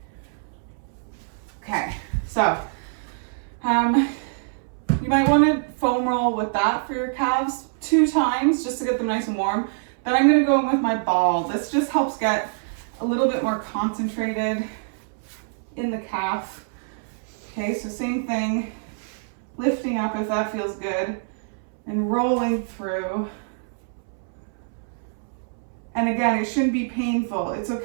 Okay, so you might want to foam roll with that for your calves 2 times just to get them nice and warm. Then I'm going to go in with my ball. This just helps get a little bit more concentrated in the calf. Okay, so same thing, lifting up if that feels good, and rolling through. And again, it shouldn't be painful. It's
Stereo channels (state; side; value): silent; left; 62 dB below the other